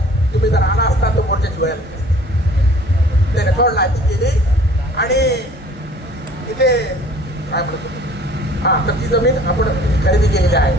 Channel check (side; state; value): both; normal; correlation 0.51